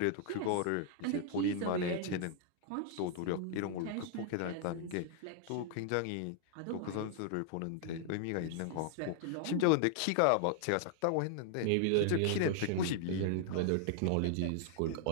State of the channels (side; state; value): both; different; correlation 0.00